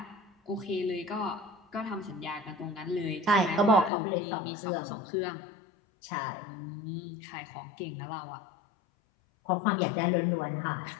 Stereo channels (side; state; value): right; drops out; at 3.9 s